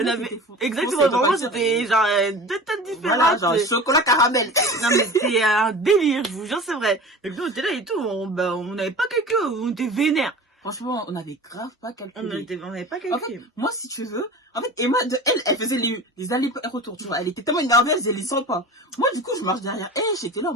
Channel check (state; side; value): normal; both; correlation 0.36